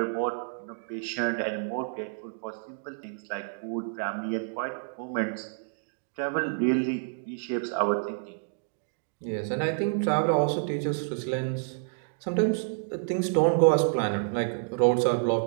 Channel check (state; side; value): silent; left; digital silence